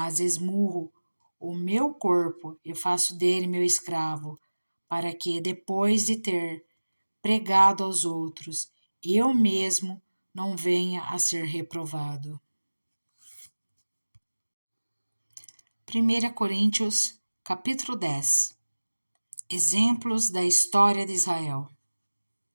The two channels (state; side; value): inverted; both; correlation -1.00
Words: esmurro o meu corpo e faço dele meu escravo, para que, depois de ter pregado aos outros, eu mesmo não venha a ser reprovado. 1 Coríntios, capítulo 10. Exemplos da história de Israel.